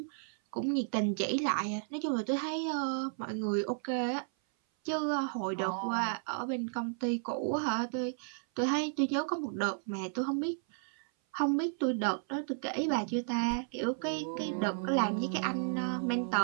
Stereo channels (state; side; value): silent; left; 56 dB below the other